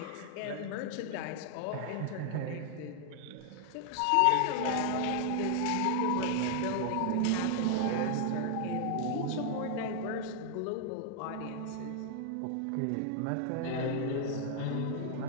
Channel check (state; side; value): different; both; correlation 0.00